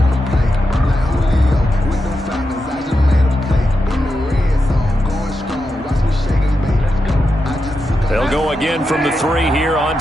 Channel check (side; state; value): both; normal; correlation 0.88